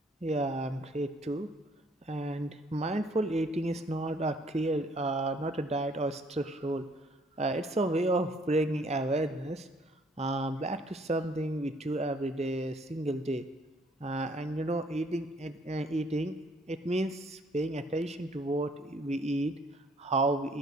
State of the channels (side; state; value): both; normal; correlation 0.62